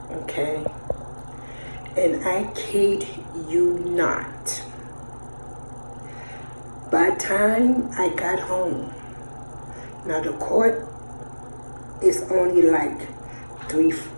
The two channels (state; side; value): inverted; both; correlation -1.00